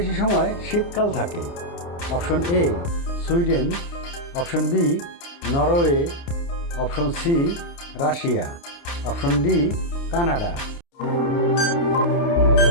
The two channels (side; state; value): right; late; 29 ms